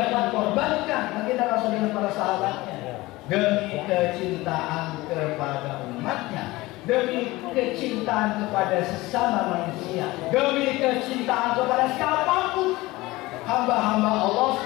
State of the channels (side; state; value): right; quieter; 20.0 dB